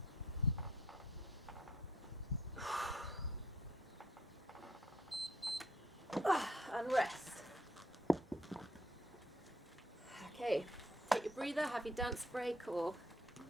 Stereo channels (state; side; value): normal; both; correlation 0.66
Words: And rest. Okay, take your breather, have your dance break or